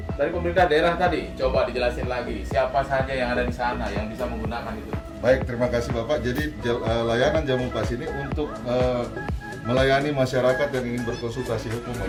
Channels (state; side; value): identical; both; correlation 1.00